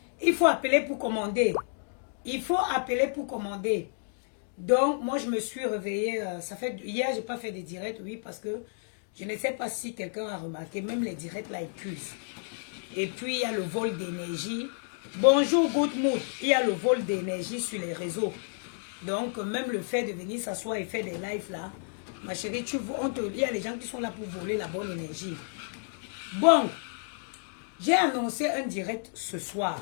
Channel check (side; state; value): right; silent; digital silence